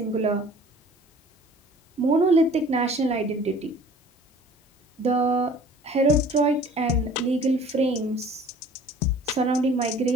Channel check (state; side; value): normal; both; correlation 0.49